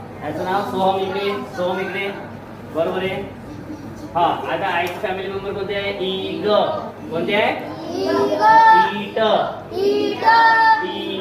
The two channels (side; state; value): both; identical; correlation 1.00